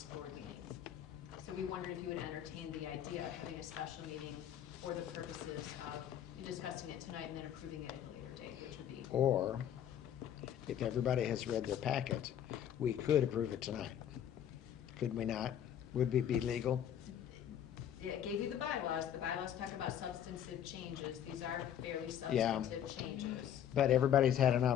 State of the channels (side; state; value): right; quieter; 9.9 dB